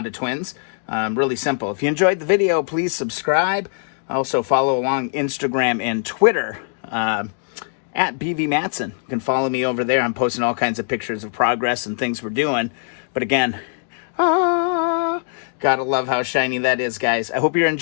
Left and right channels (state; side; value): silent; right; digital silence